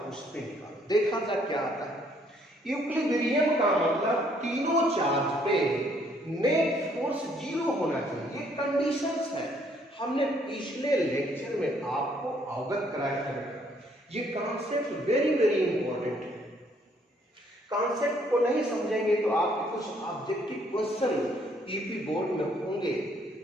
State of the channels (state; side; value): normal; both; correlation 0.66